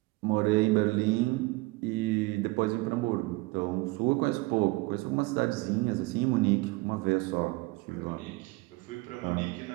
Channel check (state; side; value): quieter; left; 23.3 dB